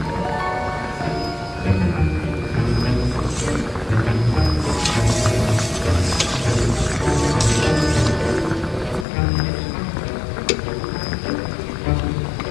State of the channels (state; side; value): drops out; right; at 9.1 s